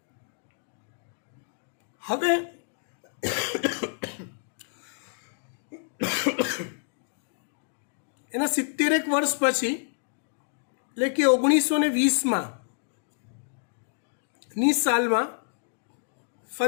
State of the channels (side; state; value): right; silent; digital silence